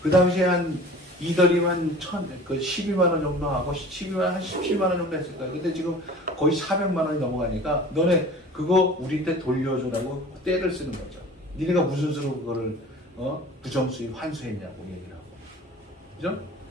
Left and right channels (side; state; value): both; normal; correlation 0.42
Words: 그 당시에 한 이더리움 12만원 정도 하고, 17만원 정도 했을 거야. 근데 지금 거의 400만원이 넘어가니까, 너네 그거 우리한테 돌려주라고 떼를 쓰는 거죠. 니네가 무슨 수로 그거를, 부정수익 환수했냐고 얘기를 하고. 그죠?